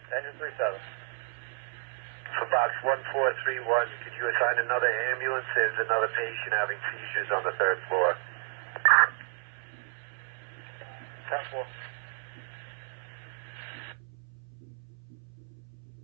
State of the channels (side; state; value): left; silent; 57 dB below the other